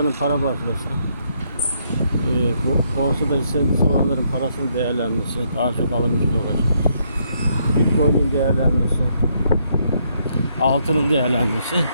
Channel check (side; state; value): both; inverted; correlation -0.74